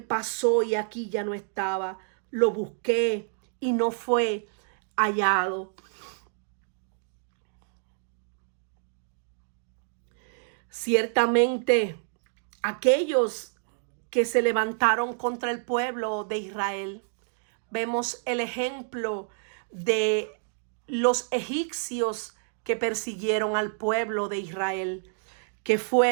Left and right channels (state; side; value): silent; left; digital silence